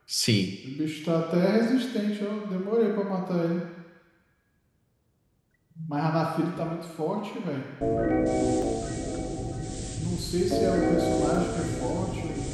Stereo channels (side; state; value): both; identical; correlation 1.00